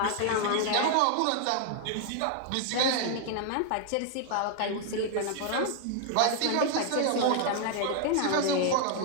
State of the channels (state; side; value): different; both; correlation 0.00